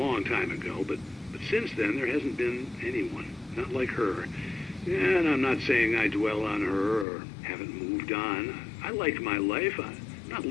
time ago, but since then there hasn't been anyone, not like her. And I'm not saying I dwell on her or haven't moved on. I like my life. I'm not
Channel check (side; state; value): right; drops out; at 7.1 s